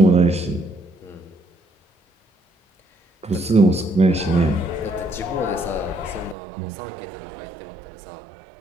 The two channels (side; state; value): left; drops out; at 6.4 s